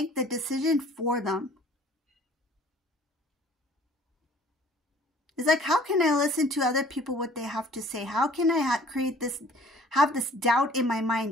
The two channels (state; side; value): normal; both; correlation 0.53